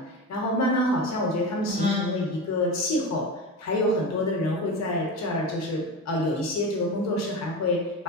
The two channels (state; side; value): normal; both; correlation 0.24